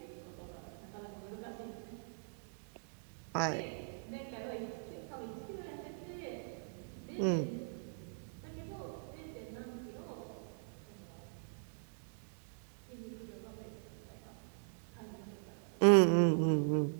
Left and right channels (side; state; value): left; silent; digital silence